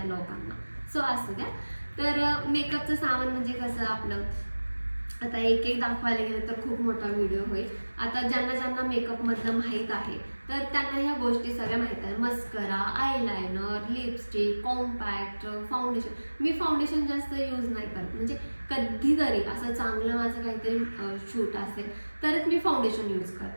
लोकांना. सो असू द्या. तर मेकअपचं सामान म्हणजे कसं आपलं आता एक एक दाखवायला गेलं तर खूप मोठा व्हिडिओ होईल. आता ज्यांना ज्यांना मेकअप मधलं माहीत आहे तर त्यांना ह्या गोष्टी सगळ्या माहीत आहे. Mascara, eyeliner, lipstick, compact, foundation. मी फाउंडेशन जास्त यूज नाही करत, म्हणजे कधीतरी असं चांगलं माझं काहीतरी शूट असेल तरच मी फाउंडेशन यूज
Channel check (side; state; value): both; inverted; correlation -1.00